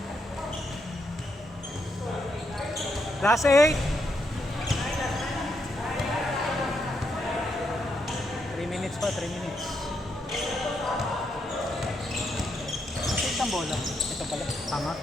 Last 8. 3 minutes pa, 3 minutes. Ang bola. Ito pala. Tama.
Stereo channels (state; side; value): normal; both; correlation 0.79